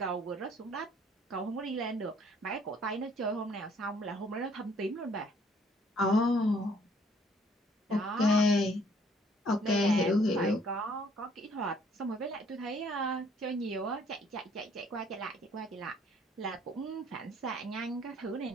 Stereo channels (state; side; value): normal; both; correlation 0.61